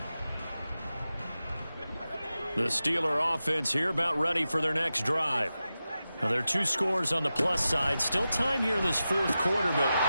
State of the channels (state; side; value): inverted; both; correlation -0.92